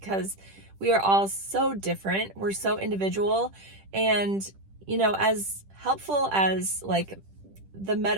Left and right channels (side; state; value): left; late; 10 ms